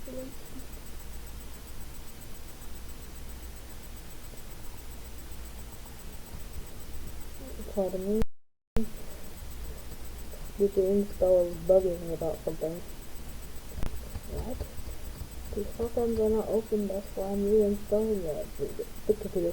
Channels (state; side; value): identical; both; correlation 1.00